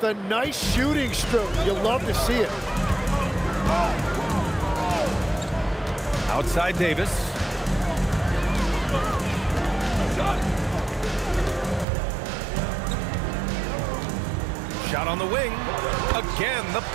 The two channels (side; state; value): left; drops out; at 11.9 s